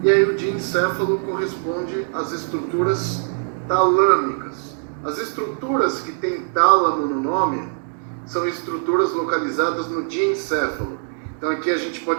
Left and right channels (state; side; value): silent; left; digital silence